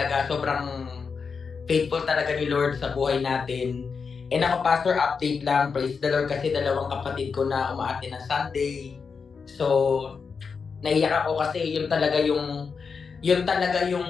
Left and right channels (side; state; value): right; quieter; 5.5 dB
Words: Sobrang faithful talaga ni Lord sa buhay natin. And ako, Pastor, update lang. Praise the Lord kasi dalawang kapatid ko na umaati ng Sunday. So, naiyak ako kasi yun talaga yung